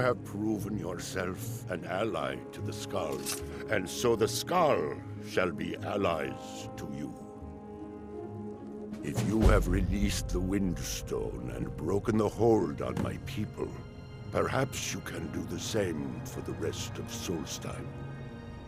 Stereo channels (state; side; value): identical; both; correlation 1.00